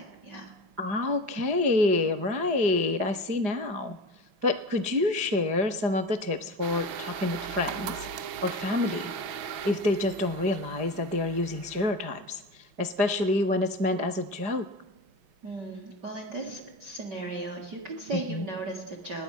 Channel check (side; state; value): left; late; 4.9 ms